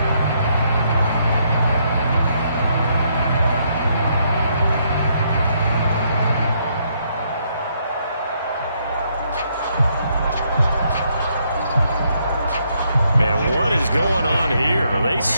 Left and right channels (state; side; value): inverted; both; correlation -0.73